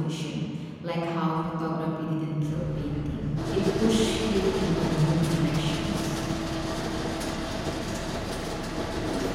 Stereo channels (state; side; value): identical; both; correlation 1.00